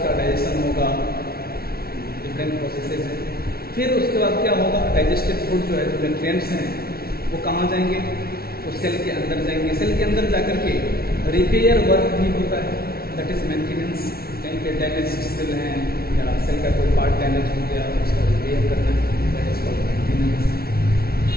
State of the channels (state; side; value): late; right; 0.44 ms